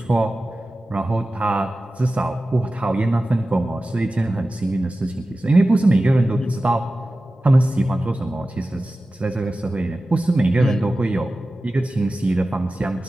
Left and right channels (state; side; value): normal; both; correlation 0.95